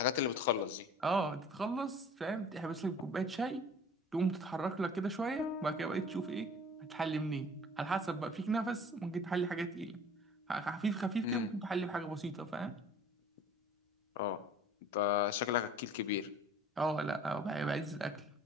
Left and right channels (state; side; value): normal; both; correlation 0.47